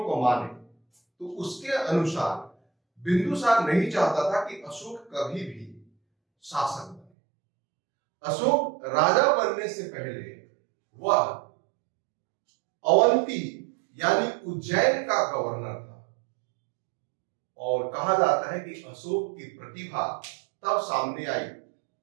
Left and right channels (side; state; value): left; drops out; at 7.1 s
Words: को माने तो उसके अनुसार बिंदुसार नहीं चाहता था कि अशोक कभी भी शासक बने। अशोक राजा बनने से पहले वह अवंती यानी उज्जैन का गवर्नर था और कहा जाता है कि अशोक की प्रतिभा तब सामने आई